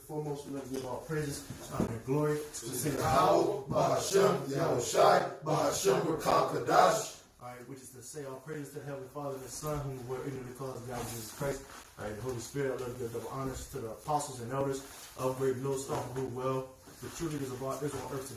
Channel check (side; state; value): both; identical; correlation 1.00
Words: foremost, we want to give all praises, honor, and glory to the Savior. Bahashem, Yahushai, Bahashem, Rakakadash. All right, which is to say all praises to the Heavenly Father and the Son, whom we were ignorant because of God, Jesus Christ. All right, the Holy Spirit, I love to give double honors to the apostles and elders of Great Millstone, who well. The true leaders of our Israel on earth